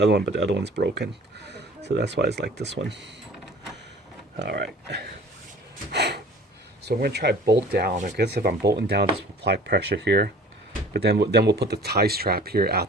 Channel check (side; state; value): both; normal; correlation 0.47